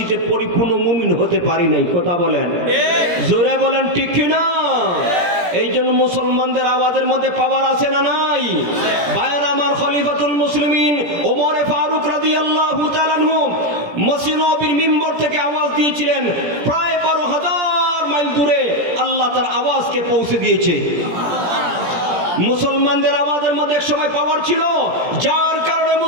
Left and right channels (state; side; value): late; left; 17 ms